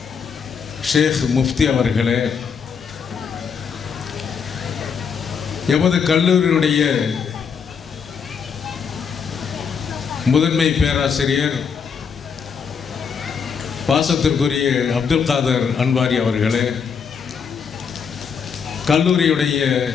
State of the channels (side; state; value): right; quieter; 6.4 dB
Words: ஷேக் முஃப்தி அவர்களே, எமது கல்லூரியினுடைய முதன்மை பேராசிரியர் பாசத்திற்குரிய அப்துல் காதர் அன்வாரி அவர்களே, கல்லூரியுடைய